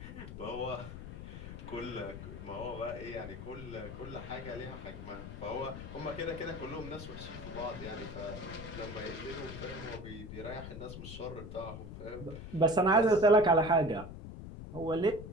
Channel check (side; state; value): left; noise; rumble, 10 dB below the sound